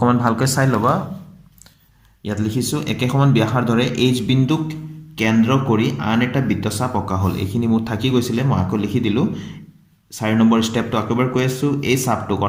ভালকৈ চাই লবা ইয়াত লিখিছো একে সমান ব্যাসাৰ্ধৰে এইচ বিন্দুক কেন্দ্ৰ কৰি আন এটা বৃত্তচাপ অকা হল এইখিনি মোৰ থাকি গৈছিলে মই আকৌ লিখি দিলো 4 নম্বৰ স্টেপটো আকবাৰ কৈ আছো এই চাপটোক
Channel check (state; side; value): identical; both; correlation 1.00